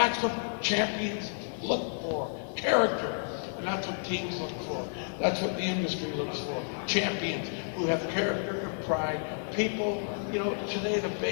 what champions look for, character. And that's what teams look for. That's what the industry looks for. Champions who have character and pride. People, today the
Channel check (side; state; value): right; silent; digital silence